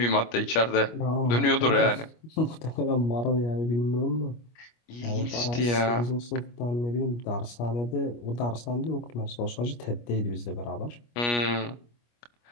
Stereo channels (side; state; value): right; late; 25 ms